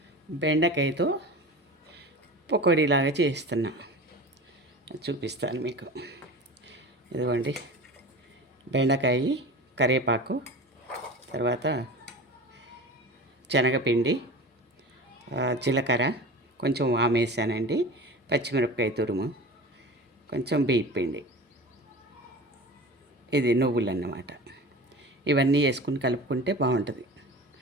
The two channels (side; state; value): both; normal; correlation 0.34